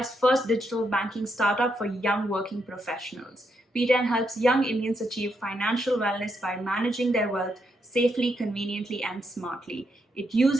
first digital banking startup for young working professionals. P10 helps young Indians achieve financial wellness by managing their wealth safely, conveniently and smartly. It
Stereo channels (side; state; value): both; normal; correlation 0.80